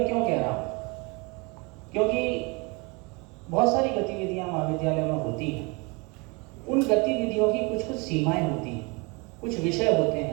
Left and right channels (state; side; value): quieter; left; 28.9 dB